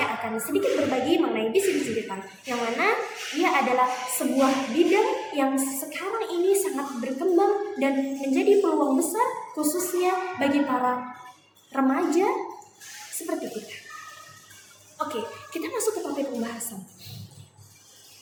akan sedikit berbagi mengenai bisnis digital, yang mana ia adalah sebuah bidang yang sekarang ini sangat berkembang dan menjadi peluang besar khususnya bagi para remaja seperti kita. Oke, kita masuk ke topik pembahasan.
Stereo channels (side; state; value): both; identical; correlation 1.00